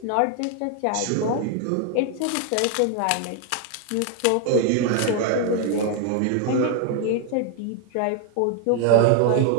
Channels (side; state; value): both; different; correlation 0.00